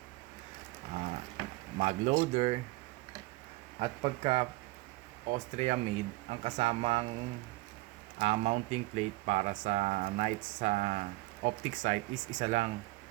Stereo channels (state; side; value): quieter; left; 20.4 dB